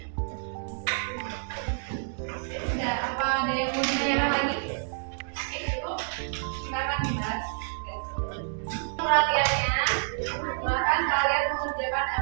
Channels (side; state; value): left; silent; digital silence